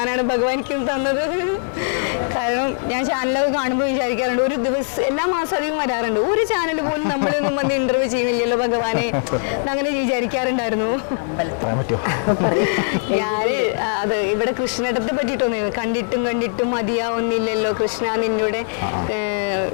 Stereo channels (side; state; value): right; silent; 65 dB below the other